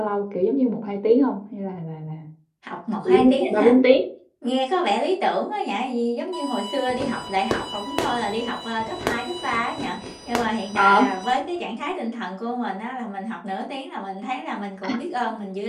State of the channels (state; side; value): identical; both; correlation 1.00